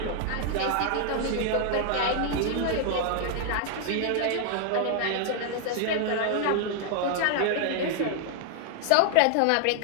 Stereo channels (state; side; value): different; both; correlation 0.00